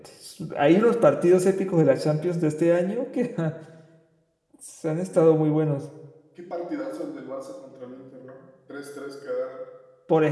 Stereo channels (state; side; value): identical; both; correlation 1.00